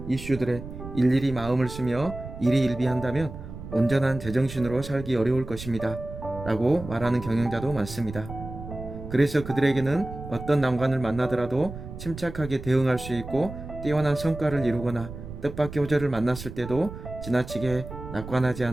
이슈들에 일일이 마음을 쓰며 일희일비한다면 온전한 제정신으로 살기 어려울 것입니다. 라고 말하는 경영자도 많습니다. 그래서 그들에게는 어떤 난관을 만나더라도 침착하게 대응할 수 있고 뛰어난 성과를 이루거나 뜻밖의 호재를 만났을 때도 지나치게 낙관하지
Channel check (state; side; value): noise; right; rumble, 11 dB below the sound